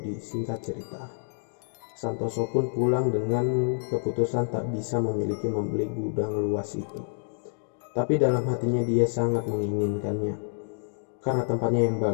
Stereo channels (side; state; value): right; silent; digital silence